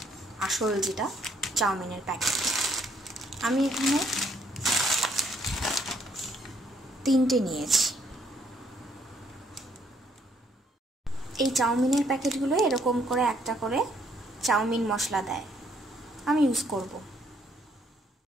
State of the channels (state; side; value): normal; both; correlation 0.68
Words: আসল যেটা চাউমিনের প্যাকেট। আমি এখানে 3টে নিয়েছি। এই চাউমিনের প্যাকেটগুলো এরকম করে একটা করে চাউমিন মশলা দেয়, আমি ইউজ করব।